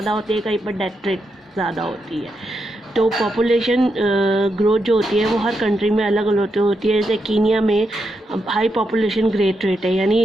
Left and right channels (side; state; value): both; normal; correlation 0.83